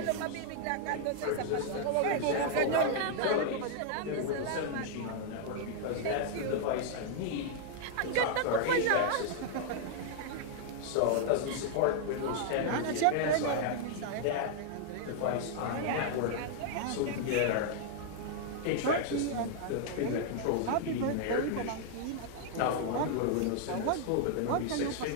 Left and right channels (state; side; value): different; both; correlation 0.00